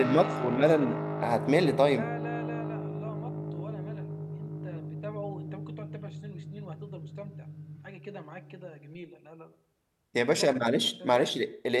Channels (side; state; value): both; identical; correlation 1.00